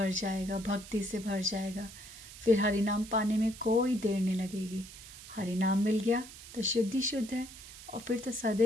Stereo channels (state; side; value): noise; right; hiss, 16 dB below the sound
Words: जाएगा, भक्ति से भर जाएगा। फिर हरि नाम पाने में कोई देर नहीं लगेगी। हरि नाम मिल गया तो शुद्धि शुद्ध है, और फिर तो